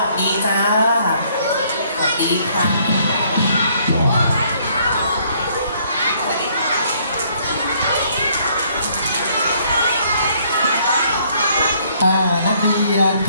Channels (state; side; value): inverted; both; correlation -0.65